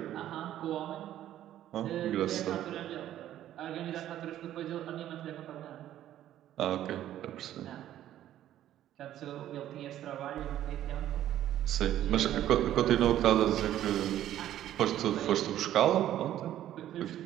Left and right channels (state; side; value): quieter; left; 12.3 dB